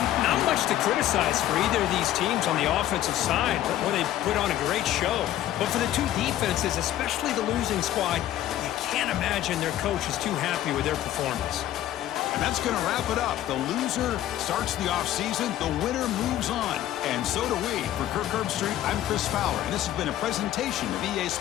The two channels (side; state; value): right; quieter; 12.9 dB